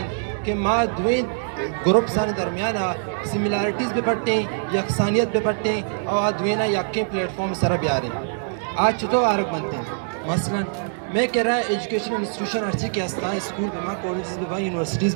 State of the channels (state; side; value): silent; left; digital silence